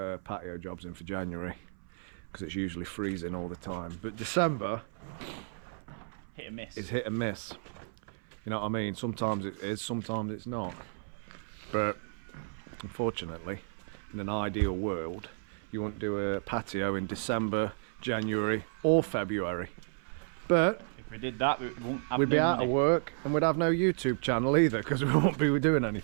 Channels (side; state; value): left; silent; 56 dB below the other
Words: patio jobs in for January because it's usually freezing all the time. But December Hit and miss. is hit and miss. You know what I mean? Sometimes it is, sometimes it's not. But unfortunately, in an ideal world, you wouldn't do a patio in December, January or February. But If we did that, we wouldn't have we'd be no out money. of work and we'd have no YouTube channel either, because we won't be doing